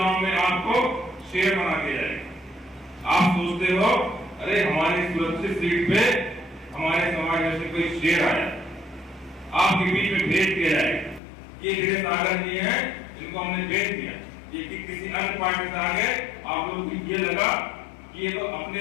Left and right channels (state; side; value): drops out; right; at 11.2 s